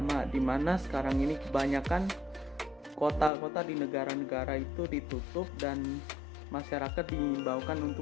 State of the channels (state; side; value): drops out; right; at 3.3 s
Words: di mana sekarang ini kebanyakan kota-kota di negara-negara itu ditutup dan masyarakat diimbaukan